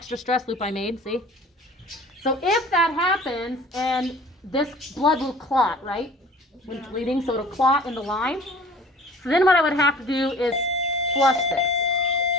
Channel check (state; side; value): normal; both; correlation 0.45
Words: stress loop I made, see? So if that happens, and this blood will clot, right? When it's bleeding, so it'll clot in the line. So then what I would have to do is flush this.